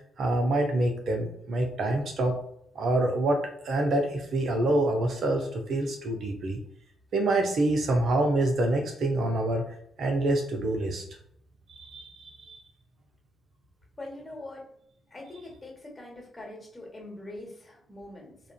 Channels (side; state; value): both; normal; correlation 0.77